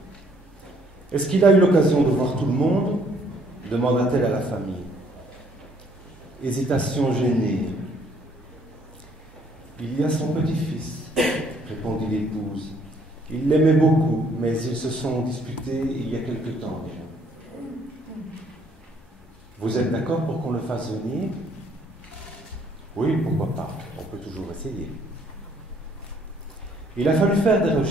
Est-ce qu'il a eu l'occasion de voir tout le monde? Demanda-t-elle à la famille. Hésitation gênée. Il y a son petit-fils, répondit l'épouse. Il l'aimait beaucoup, mais ils se sont disputés il y a quelque temps déjà. Vous êtes d'accord pour qu'on le fasse venir? Oui, pourquoi pas, on peut toujours essayer. Il a fallu faire des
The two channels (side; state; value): both; normal; correlation 0.64